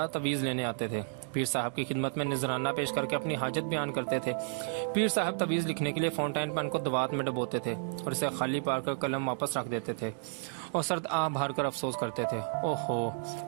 تویز لینے آتے تھے۔ پیر صاحب کی خدمت میں نذرانہ پیش کر کے اپنی حاجت بیان کرتے تھے۔ پیر صاحب تویز لکھنے کے لیے فاؤنٹین پین کو دوات میں ڈبوتے تھے اور اسے خالی پار کر قلم واپس رکھ دیتے تھے اور سرد آہ بھر کر افسوس کرتے تھے، اوہو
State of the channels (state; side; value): silent; left; digital silence